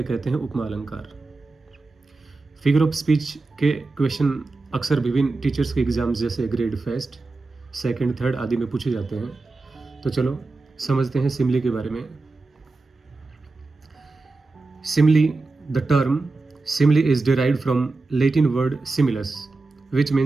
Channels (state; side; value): quieter; left; 3.5 dB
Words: कहते हैं उपमा अलंकार। फिगर ऑफ स्पीच के क्वेश्चन अक्सर विभिन्न टीचर्स के एग्जाम्स जैसे ग्रेड फर्स्ट, सेकंड, थर्ड आदि में पूछे जाते हैं। तो चलो समझते हैं सिमिली के बारे में। Simile, the term simile is derived from Latin word similis which